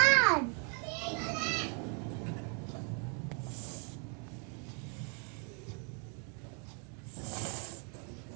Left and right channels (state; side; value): quieter; left; 39.0 dB